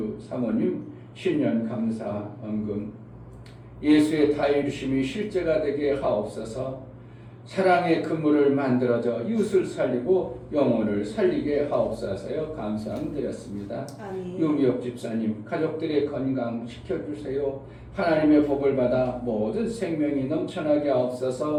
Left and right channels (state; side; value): identical; both; correlation 1.00